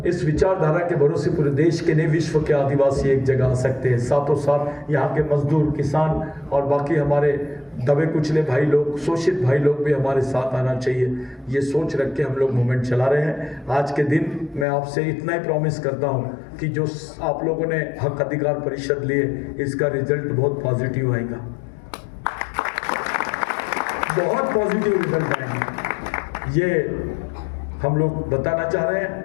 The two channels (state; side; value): drops out; right; at 14.7 s